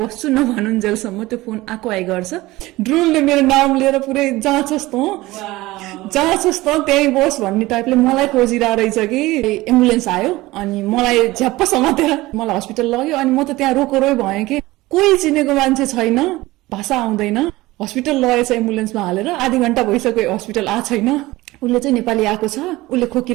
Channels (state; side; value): quieter; left; 19.1 dB